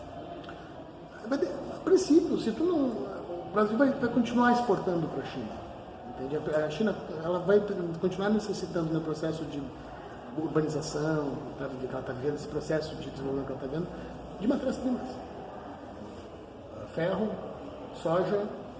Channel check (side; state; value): both; identical; correlation 1.00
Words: a princípio, o Brasil vai continuar exportando para a China. Entende? A China ela vai continuar necessitando no processo de urbanização, que ela está vivendo, esse processo de desenvolvimento que ela está vendo, de matérias-primas. Ferro, soja,